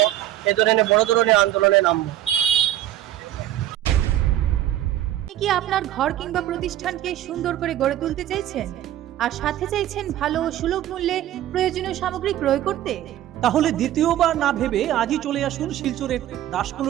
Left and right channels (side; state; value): left; quieter; 12.9 dB